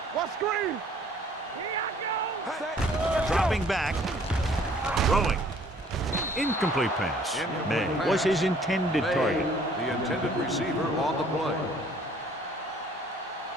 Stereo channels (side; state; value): both; normal; correlation 0.57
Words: What screen? Here I go. Dropping back. Throwing. Incomplete pass. May was his intended target. The intended receiver on the play.